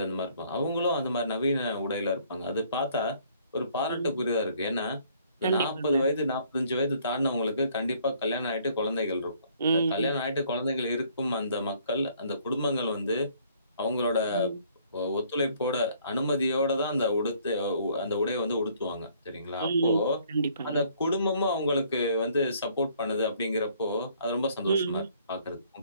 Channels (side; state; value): both; inverted; correlation -0.62